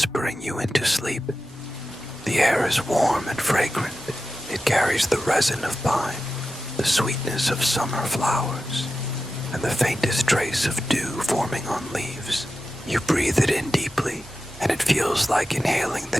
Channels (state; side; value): normal; both; correlation 0.92